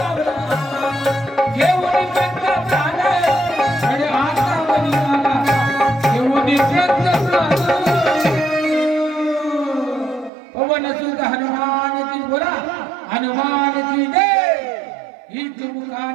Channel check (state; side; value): drops out; left; at 10.3 s